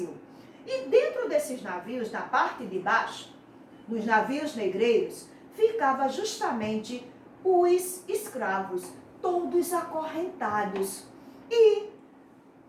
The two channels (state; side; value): identical; both; correlation 1.00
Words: E dentro desses navios, na parte de baixo, nos navios negreiros, ficava justamente os escravos, todos acorrentados. E